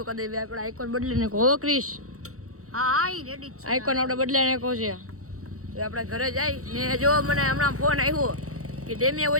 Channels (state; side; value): late; left; 0.64 ms